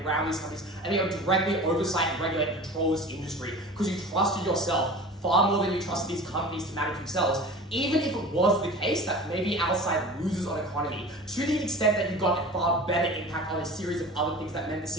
around these companies and directly oversight and regulate and control this industry because you trusted yourself far more than you trusted these companies to manage themselves, even if it was the case that maybe our side loses on economy, to the extent that you got a far better impact on a series of other things that meant the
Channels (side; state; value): both; normal; correlation 0.37